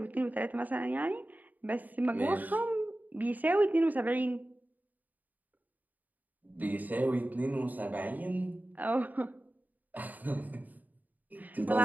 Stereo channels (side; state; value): left; late; 0.082 ms